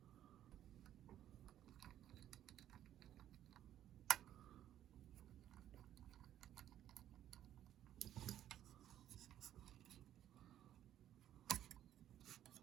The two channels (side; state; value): left; quieter; 11.5 dB